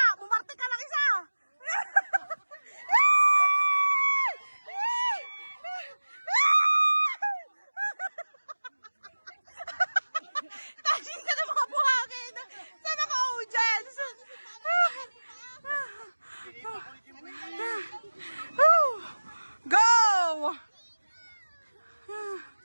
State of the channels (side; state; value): both; inverted; correlation -1.00